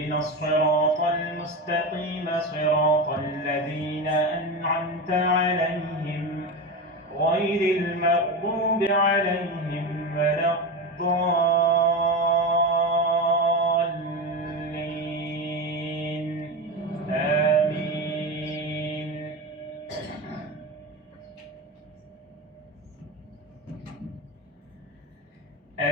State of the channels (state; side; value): normal; both; correlation 0.21